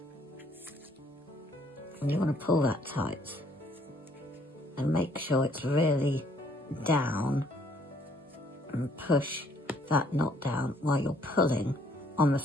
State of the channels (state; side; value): normal; both; correlation 0.64